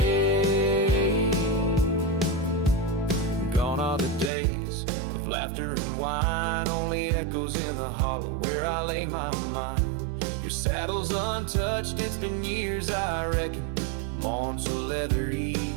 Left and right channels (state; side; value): drops out; left; at 4.3 s